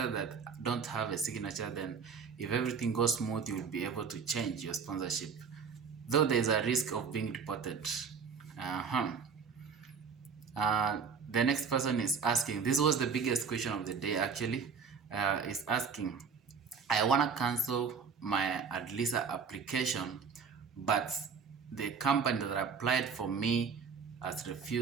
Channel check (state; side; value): quieter; left; 5.8 dB